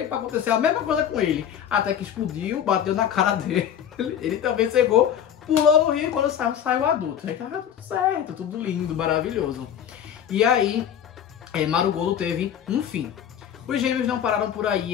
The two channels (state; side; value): quieter; right; 9.3 dB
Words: para acontecer a mesma coisa com ele. Até que explodiu, bateu na cara dele. Ele também cegou, pulou no rio e quando saiu adulto. Aí tava tudo certo, tudo lindo, maravilhoso. E aí, Marugodo teve um fim. Os gêmeos não pararam por aí,